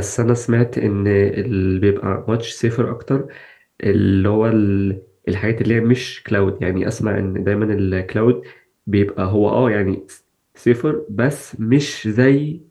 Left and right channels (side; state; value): both; identical; correlation 1.00